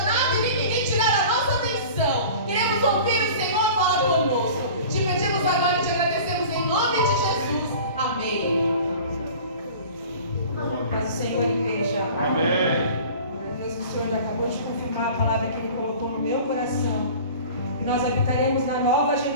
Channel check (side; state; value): both; inverted; correlation -0.41